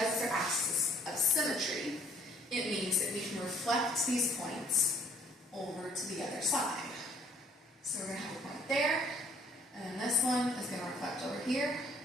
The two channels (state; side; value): normal; both; correlation 0.60